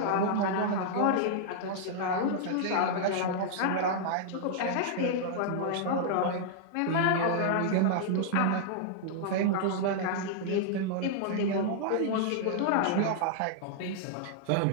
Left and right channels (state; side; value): different; both; correlation -0.01